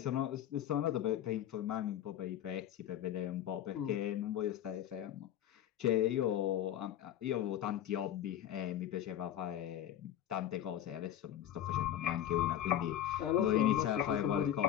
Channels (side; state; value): right; quieter; 11.1 dB